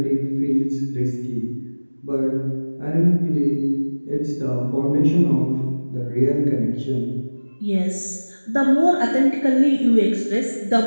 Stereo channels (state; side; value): inverted; both; correlation -1.00